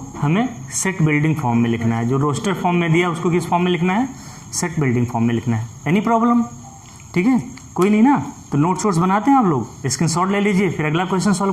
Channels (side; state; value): both; identical; correlation 1.00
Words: हमें सेट बिल्डिंग फॉर्म में लिखना है, जो रोस्टर फॉर्म में दिया उसको किस फॉर्म में लिखना है, सेट बिल्डिंग फॉर्म में लिखना है। एनी प्रॉब्लम, ठीक है, कोई नहीं ना। तो नोट शोट्स बनाते हैं आप लोग, स्क्रीनशॉट ले लीजिए, फिर अगला क्वेश्चन